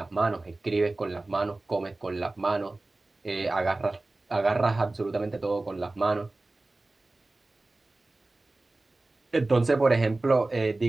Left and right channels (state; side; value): quieter; left; 3.0 dB